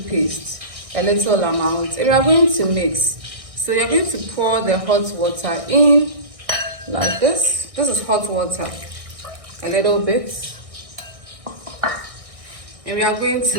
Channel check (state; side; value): late; left; 1.6 ms